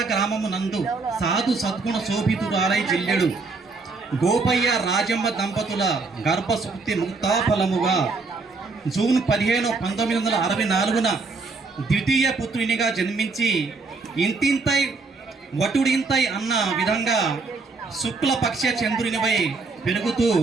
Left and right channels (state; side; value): quieter; left; 4.0 dB